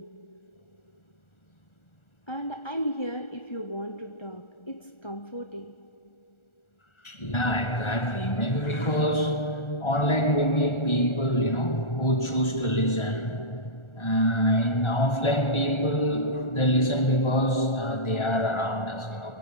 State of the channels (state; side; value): late; right; 1.4 ms